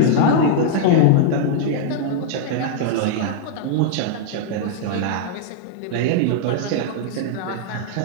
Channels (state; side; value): different; both; correlation -0.01